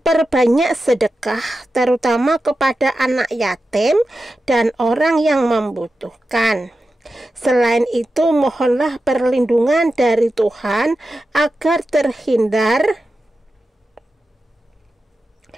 sedekah, terutama kepada anak yatim dan orang yang membutuhkan. Selain itu, mohonlah perlindungan dari Tuhan agar terhindar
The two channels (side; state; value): both; normal; correlation 0.91